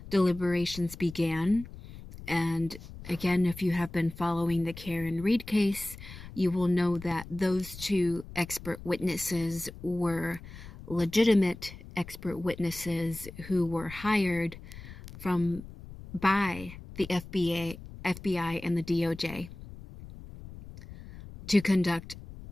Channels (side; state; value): left; noise; rumble, 15 dB below the sound